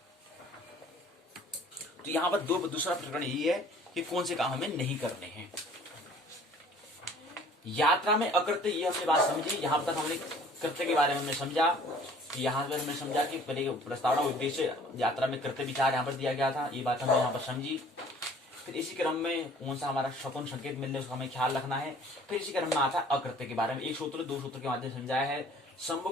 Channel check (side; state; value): both; normal; correlation 0.52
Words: तो यहां पर दूसरा प्रकरण ये है कि कौन से काम हमें नहीं करने हैं। यात्रा में अकृत्य, ये हमने बात समझी। यहां तक हमने कृत्य के बारे में हमने समझा कि यहाँ पर हमने समझा कि पहले प्रस्तावना उद्देश्य यात्रा में कृत्य विचार यहाँ पर दिया गया था, ये बात हमने यहाँ पर समझी। फिर इसी क्रम में कौन सा हमारा शकुन संकेत मिलने उसका हमें ख्याल रखना है। फिर इसी क्रम में आता है अकृत्य के बारे में, एक सूत्र दो सूत्र के माध्यम से समझाया है।